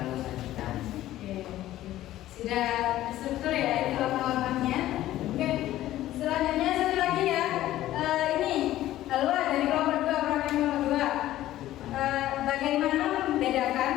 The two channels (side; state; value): right; quieter; 14.3 dB